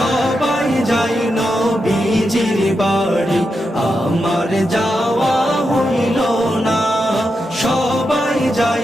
যাই নবীজির বাড়ি, আমার যাওয়া হইল না। সবাই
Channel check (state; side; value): normal; both; correlation 0.86